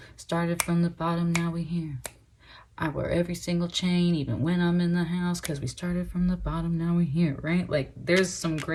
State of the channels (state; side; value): identical; both; correlation 1.00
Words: started from the bottom, now we here. I wear every single chain, even when I'm in the house, because we started from the bottom, now we're here, right? Like, there's some